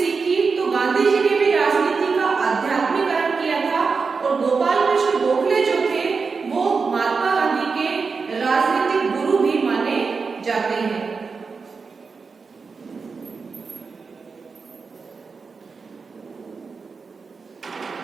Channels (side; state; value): left; quieter; 4.9 dB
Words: तो गांधी जी ने भी राजनीति का आध्यात्मिकरण किया था और गोपाल कृष्ण गोखले जो थे वो महात्मा गांधी के राजनीतिक गुरु भी माने जाते हैं।